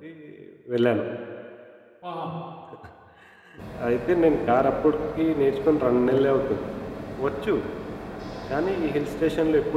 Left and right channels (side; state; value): both; identical; correlation 1.00